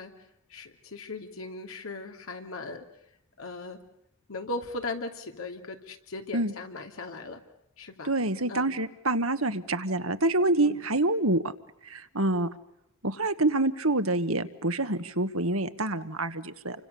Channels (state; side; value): normal; both; correlation 0.02